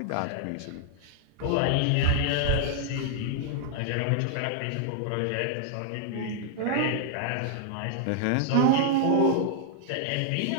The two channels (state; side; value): different; both; correlation 0.00